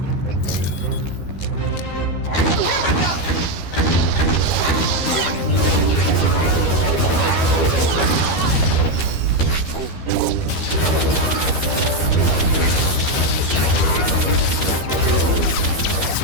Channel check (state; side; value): late; right; 12 ms